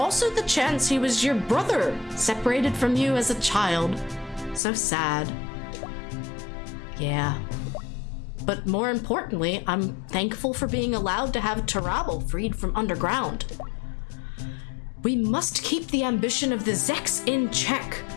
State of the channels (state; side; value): drops out; right; at 4.6 s